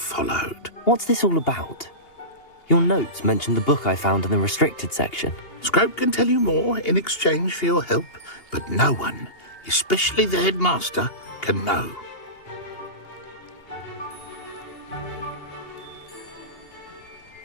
What's this all about? Your notes mentioned the book I found in the restricted section. Scrope can tell you more in exchange for your help, but no one, especially the headmaster, can know.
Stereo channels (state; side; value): late; right; 2.8 ms